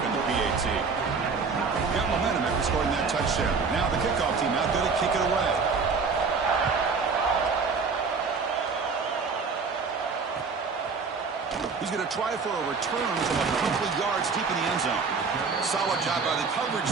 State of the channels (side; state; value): left; quieter; 4.9 dB